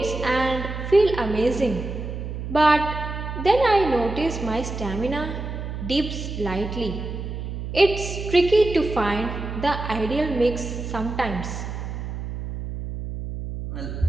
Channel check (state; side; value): noise; right; hum, 6 dB below the sound